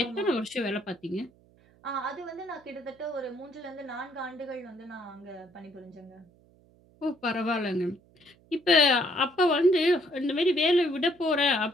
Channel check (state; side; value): noise; right; hum, 30 dB below the sound